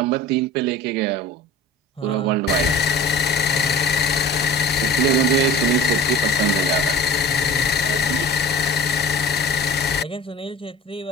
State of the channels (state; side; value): normal; both; correlation 0.40